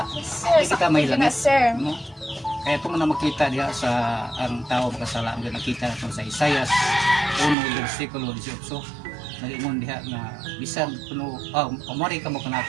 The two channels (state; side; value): drops out; left; at 7.6 s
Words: di kita may Sige na, langit sir. no kaya ito mo na makita diha sa ang tao makasala ang nakita natin sa Isaias 1 versikulo 18 nalingon diha nga bisan kuno umari ka mo